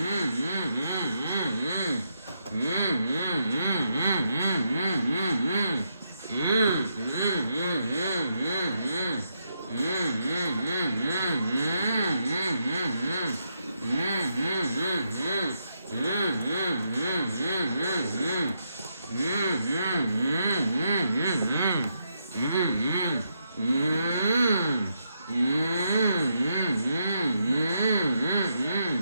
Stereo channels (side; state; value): both; inverted; correlation -0.80